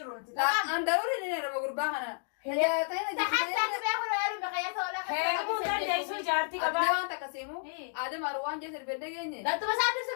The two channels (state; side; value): silent; right; digital silence